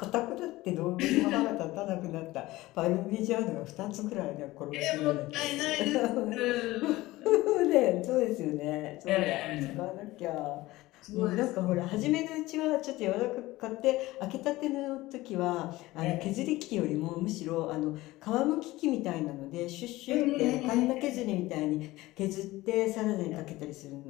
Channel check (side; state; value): right; quieter; 18.5 dB